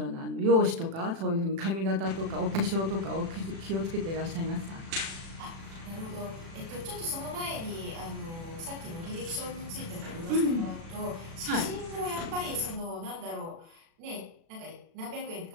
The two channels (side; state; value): left; late; 36 ms